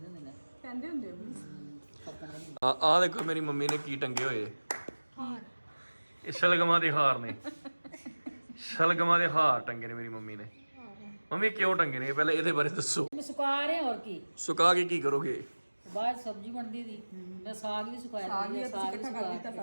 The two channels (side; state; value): both; inverted; correlation -1.00